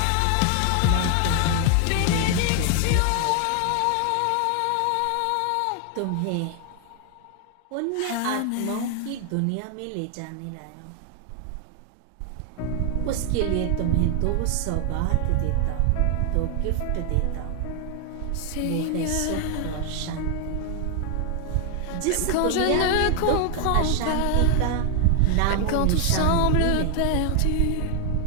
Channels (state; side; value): different; both; correlation 0.00